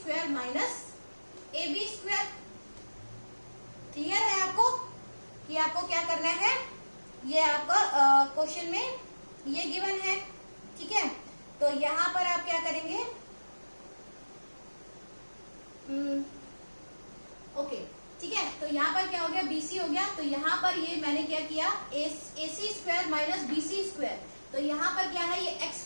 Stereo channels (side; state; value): both; inverted; correlation -1.00